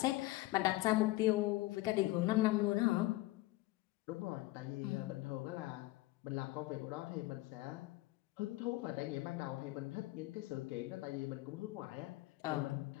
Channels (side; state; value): right; quieter; 18.7 dB